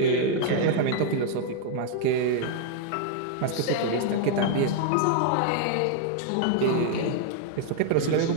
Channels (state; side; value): different; both; correlation 0.00